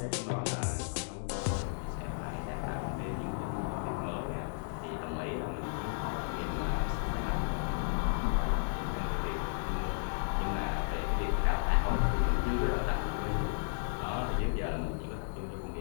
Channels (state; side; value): silent; right; digital silence